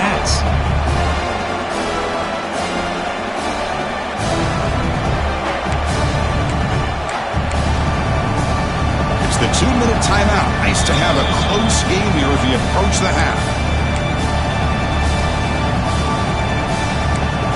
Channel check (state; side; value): identical; both; correlation 1.00